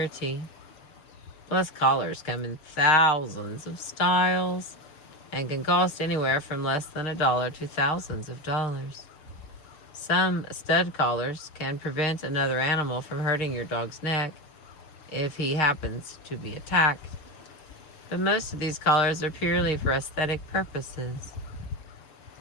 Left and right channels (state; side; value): late; right; 6.8 ms